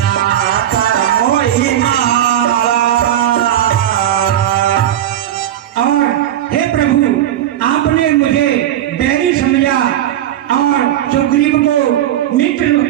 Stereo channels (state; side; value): quieter; left; 11.8 dB